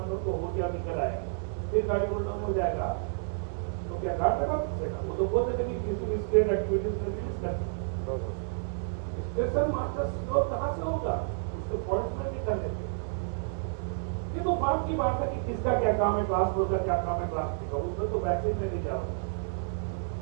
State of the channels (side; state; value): left; silent; 58 dB below the other